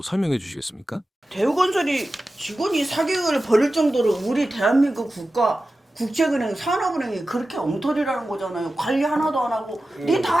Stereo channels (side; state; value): both; normal; correlation 0.94